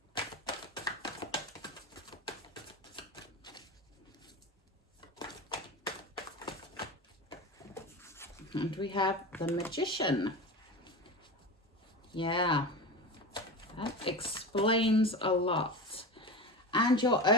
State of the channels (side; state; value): both; normal; correlation 0.27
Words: And we have the Magician. Yeah, that explains a lot. And your